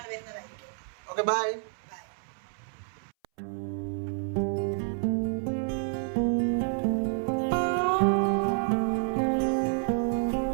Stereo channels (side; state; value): left; silent; 58 dB below the other